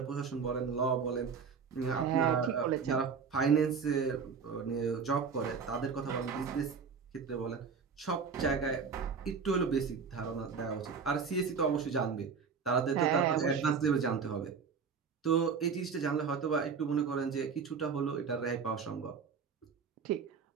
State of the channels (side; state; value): left; quieter; 5.8 dB